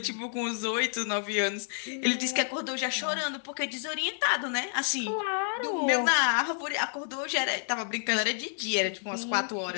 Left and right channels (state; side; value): silent; right; 58 dB below the other